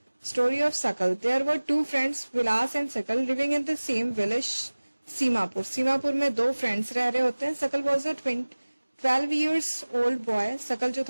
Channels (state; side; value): inverted; both; correlation -1.00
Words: Story of Sakal. There were two friends, Vilas and Sakal, living in the same village Seemapur. Seemapur में दो फ्रेंड्स रह रहे होते हैं। Sakal was a 12 years old boy. Sakal जो